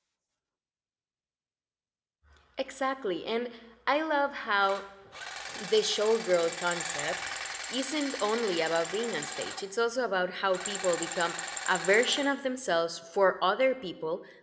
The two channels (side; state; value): both; identical; correlation 1.00